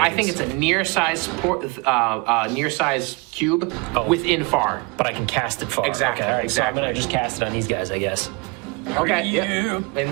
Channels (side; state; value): left; quieter; 28.9 dB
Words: think it's a near size cube within far. But I can cast it far. Exactly. Okay, exactly. So I'm gonna just cast it on these guys, I guess. Okay. Yeah.